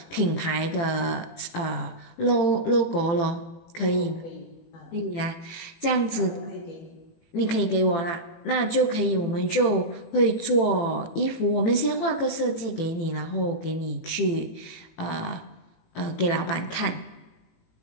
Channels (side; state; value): right; late; 18 ms